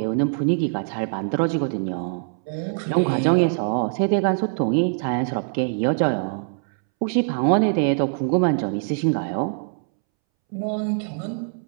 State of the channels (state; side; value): silent; left; 63 dB below the other